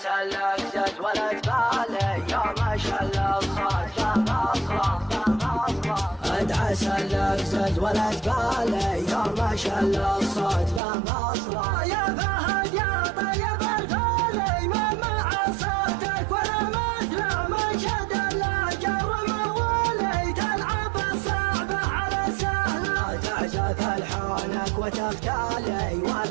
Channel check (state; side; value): drops out; left; at 10.8 s